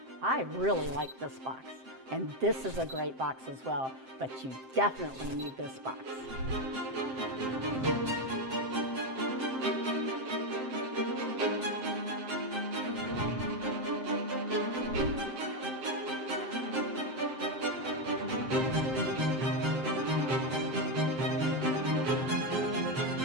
I really like this box, and this is a great box as well, but you definitely need this box.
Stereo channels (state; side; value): late; left; 7.6 ms